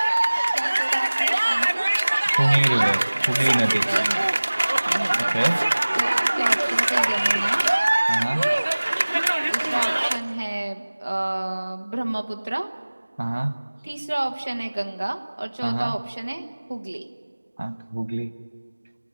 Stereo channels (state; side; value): inverted; both; correlation -1.00